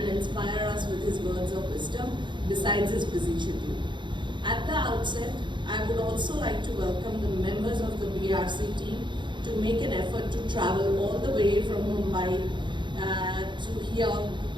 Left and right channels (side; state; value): left; late; 0.23 ms